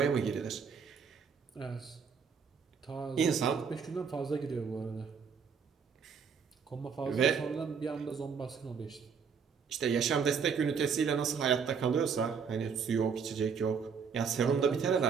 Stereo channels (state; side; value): quieter; left; 6.2 dB